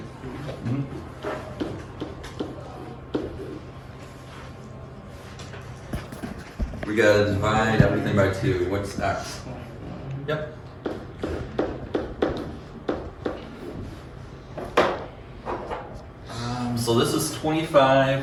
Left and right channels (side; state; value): both; identical; correlation 1.00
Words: Mhm. We gotta divide everything by 2. What's x? Yep. So this is 25.